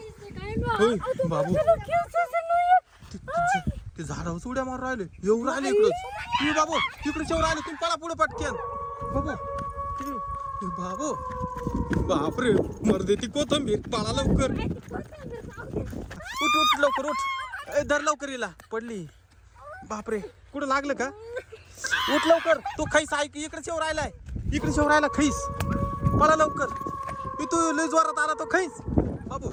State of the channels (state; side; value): identical; both; correlation 1.00